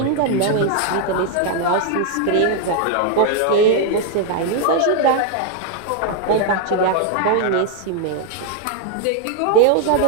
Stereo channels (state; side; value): different; both; correlation 0.00